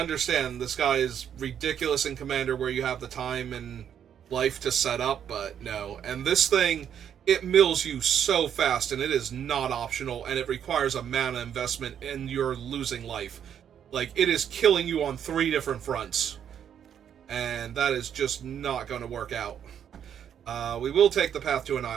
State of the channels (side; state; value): left; quieter; 8.9 dB